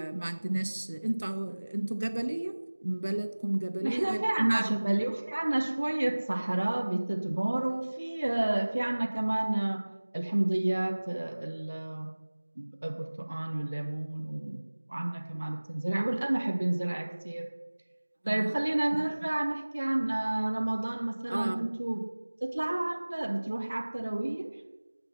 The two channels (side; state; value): both; inverted; correlation -1.00